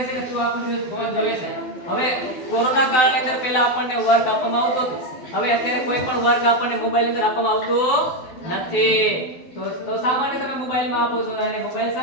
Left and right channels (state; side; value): late; right; 12 ms